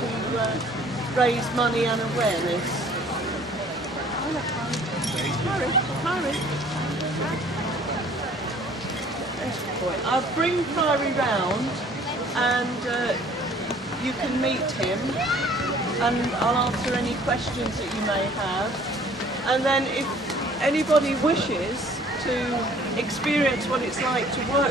raise money and awareness. Hurry. I'll bring Priory round and you can meet him, and I'll answer any questions that you may have. And then if anybody wishes to experience what it's like to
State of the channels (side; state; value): both; normal; correlation 0.54